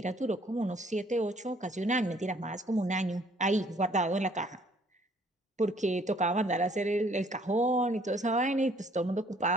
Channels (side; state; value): both; normal; correlation 0.61